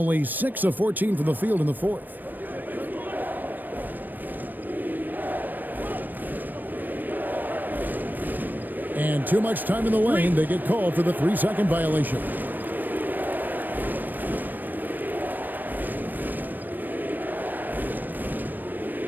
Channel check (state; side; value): late; left; 0.090 ms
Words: 6 of 14 from the field in the fourth. And too much time in the lane. They get called for the 3-second violation.